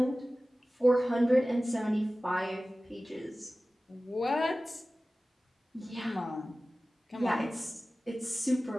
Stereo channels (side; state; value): both; normal; correlation 0.96